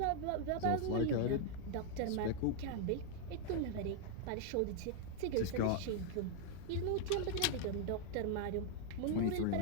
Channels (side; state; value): both; different; correlation 0.00